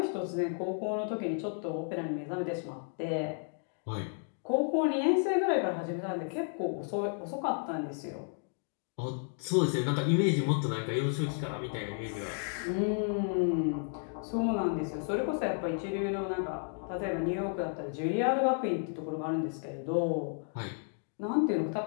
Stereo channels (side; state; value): right; silent; 56 dB below the other